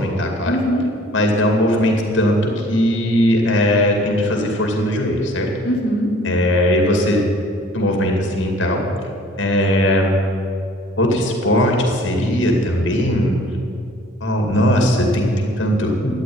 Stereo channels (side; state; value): both; normal; correlation 0.53